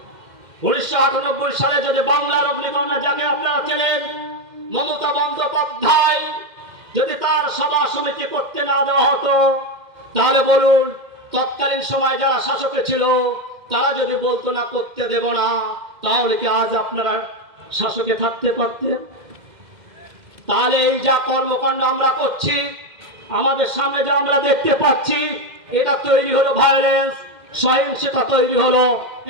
1998 সালে, যদি বাংলার অগ্নিকন্যা যাকে আপনারা চেনেন মমতা বন্দ্যোপাধ্যায়, যদি তার সভা সমিতি করতে না দেওয়া হতো, তাহলে বলুন তৎকালীন সময় যারা শাসকে ছিল তারা যদি বলতো না করতে দেব না, তাহলে কি আজ আপনারা শাসকে থাকতে পারতেন? তাহলে এই যা কর্মকাণ্ড আমরা করছি, আমাদের সামনে যা আমরা দেখতে পাচ্ছি, এটা তৈরি হলো ভায়োলেন্স, সহিংসতা তৈরি হলো।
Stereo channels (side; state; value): left; late; 2.1 ms